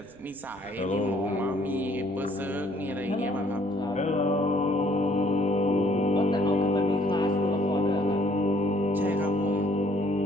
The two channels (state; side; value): noise; right; rumble, 28 dB below the sound